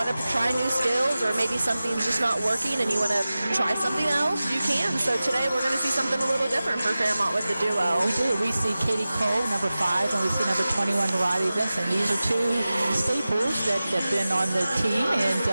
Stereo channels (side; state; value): both; inverted; correlation -0.96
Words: to try new skills, or maybe something's just not working and you want to try something else, you can. So today we're going to see something a little different for Fairmont with the duo. We do. We see Katie Cole, number 5, and we see number 21, Riley Vinson. These are 2 staples that have been on the team and